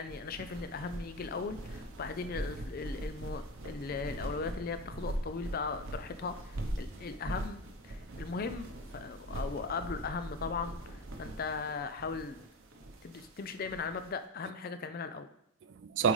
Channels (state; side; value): normal; both; correlation 0.20